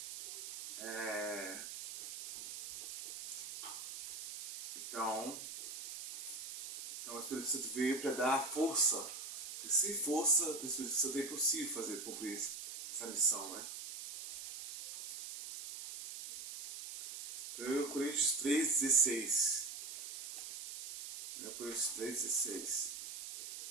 é, então o Espírito Santo veio para dar força, porque sem força do Espírito Santo é impossível cumprir essa missão, né? 1 Coríntios 3,16. 1 Coríntios 3,16.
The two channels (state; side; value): noise; right; hiss, 7 dB below the sound